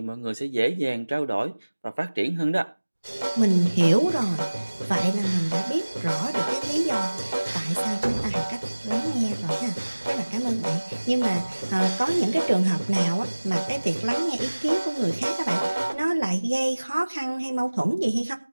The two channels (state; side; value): inverted; both; correlation -1.00